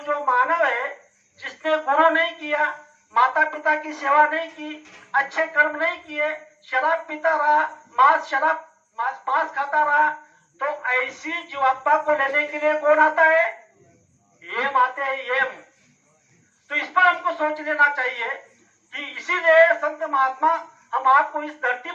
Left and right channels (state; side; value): identical; both; correlation 1.00